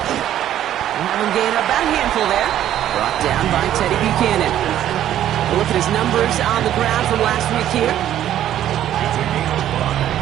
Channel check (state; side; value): quieter; left; 11.6 dB